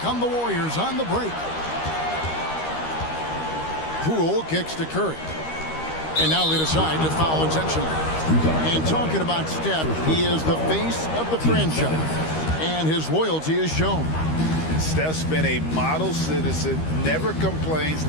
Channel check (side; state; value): right; late; 13 ms